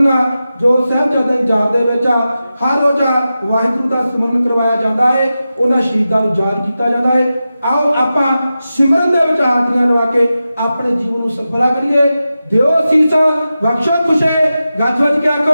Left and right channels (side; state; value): both; inverted; correlation -0.92